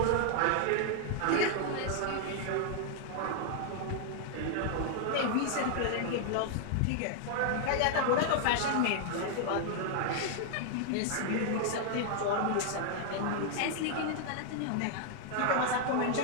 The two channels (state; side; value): different; both; correlation -0.01